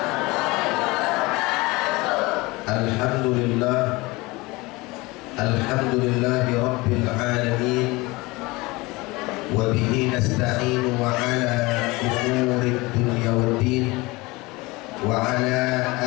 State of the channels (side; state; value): right; quieter; 22.9 dB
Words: Alhamdulillah, alhamdulillahi rabbil alamin, wa bihi nasta'inu wa ala umurid dunya waddin, wa ala